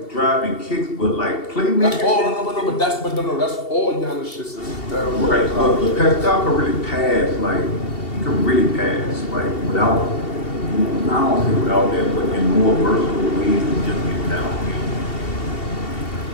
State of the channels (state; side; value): late; right; 2.7 ms